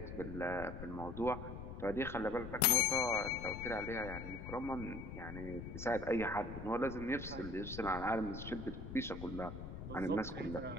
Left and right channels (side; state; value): left; noise; rumble, 9 dB below the sound